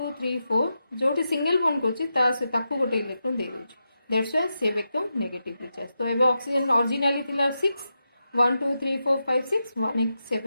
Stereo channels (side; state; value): both; inverted; correlation -0.88